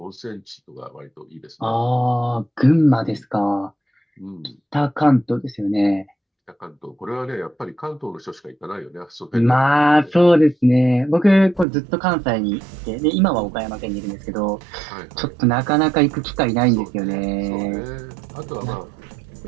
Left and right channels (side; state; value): left; drops out; at 11.7 s